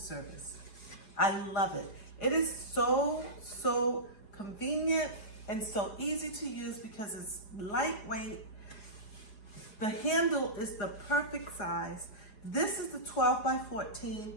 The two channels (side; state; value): right; late; 4.8 ms